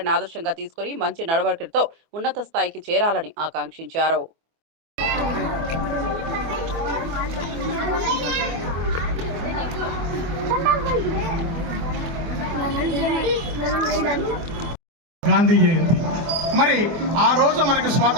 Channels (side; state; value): left; late; 24 ms